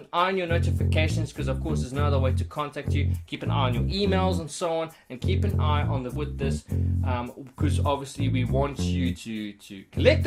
eye on your notifications, because of course there's no other way to contact you. Keep an eye on your emails and so on, and keep an eye on with this, because obviously we want you to collect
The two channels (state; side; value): identical; both; correlation 1.00